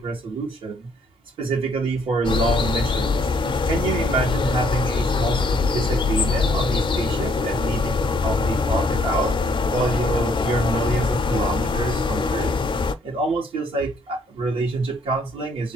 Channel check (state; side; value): normal; both; correlation 0.67